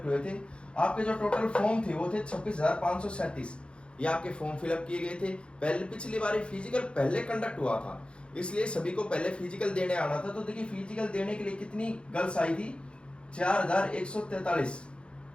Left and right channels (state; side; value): late; right; 0.057 ms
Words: हुए थे, आपके जो टोटल फॉर्म थे वो थे 26,537, ये आपके फॉर्म फिलअप किए गए थे। पहले पिछली बार फिजिकल पहले कंडक्ट हुआ था, इसलिए सभी को पहले फिजिकल देने आना था। तो देखिए फिजिकल देने के लिए कितनी गर्ल्स आई थी, 4143,